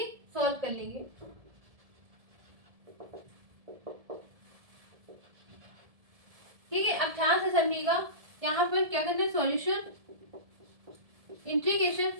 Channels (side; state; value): left; late; 1.7 ms